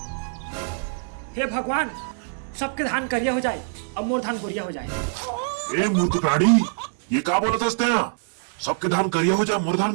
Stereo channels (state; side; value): silent; left; digital silence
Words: हे भगवान, सबके धान करिया हो जाए, अब मोर धान गोरिया हो जाए। ए मूर्ख प्राणी, ये क्या बोलत हस्ते हैं? सबके धान करिया हो जाए, मोर धान